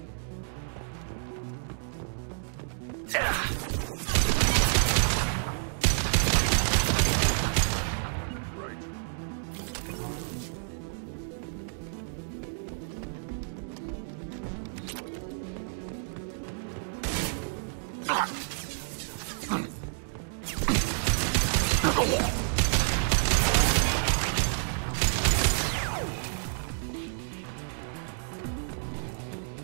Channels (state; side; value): silent; left; digital silence